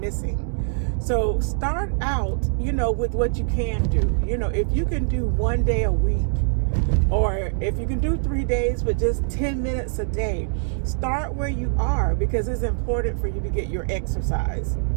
So start out, you know, with what you can do. You know, if you can do 1 day a week, or if you can do 3 days with just 10 minutes a day, start where you are, because it's important for you to get your exercise.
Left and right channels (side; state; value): left; silent; digital silence